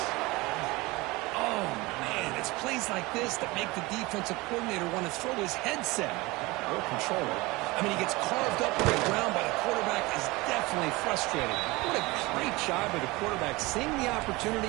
It's plays like this that make the defensive coordinator want to throw his headset or controller. I mean, he gets carved up on the ground by the quarterback, is definitely frustrated. What a great job of the quarterback seeing the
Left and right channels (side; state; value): left; quieter; 22.6 dB